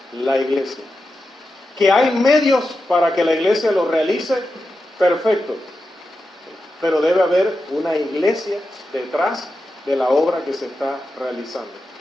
la iglesia. Que hay medios para que la iglesia lo realice, perfecto. Pero debe haber una iglesia detrás de la obra que se está realizando.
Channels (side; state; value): both; normal; correlation 0.90